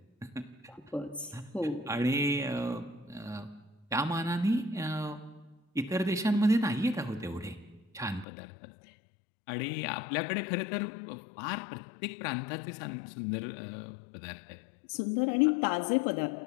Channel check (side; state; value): right; drops out; at 8.2 s